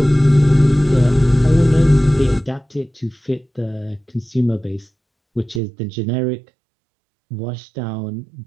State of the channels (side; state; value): left; drops out; at 5.6 s